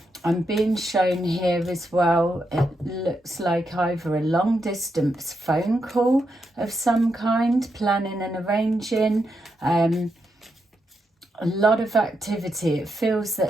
being shown here as well, it looks like either a long distance phone call of some kind, planning and arranging, a lot of activity. It feels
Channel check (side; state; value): both; normal; correlation 0.83